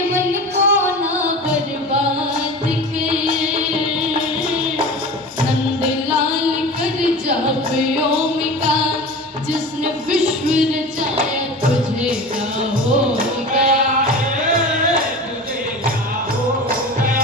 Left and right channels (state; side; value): normal; both; correlation 0.33